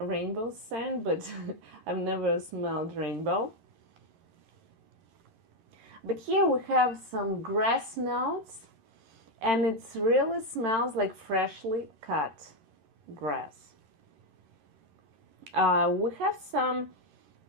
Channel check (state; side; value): late; left; 11 ms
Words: scent, but I've never smelled rainbow. But here we have some grass notes, and it really smells like freshly cut grass. We have some